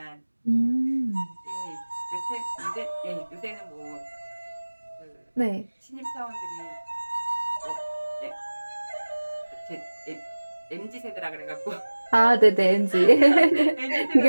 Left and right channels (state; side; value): inverted; both; correlation -1.00